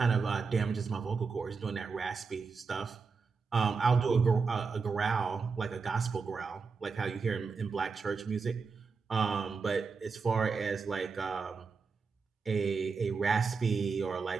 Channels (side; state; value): left; quieter; 5.0 dB